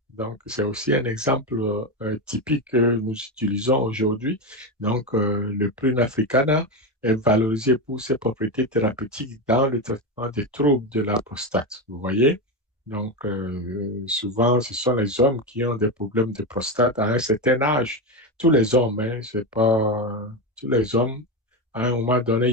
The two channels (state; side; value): normal; both; correlation 0.14